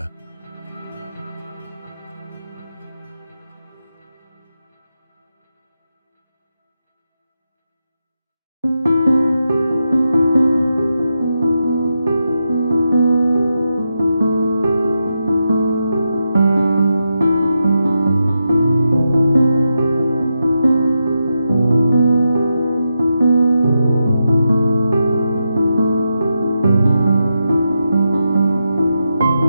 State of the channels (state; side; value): inverted; both; correlation -0.87